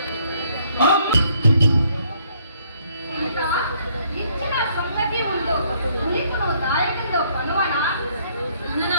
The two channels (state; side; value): inverted; both; correlation -0.66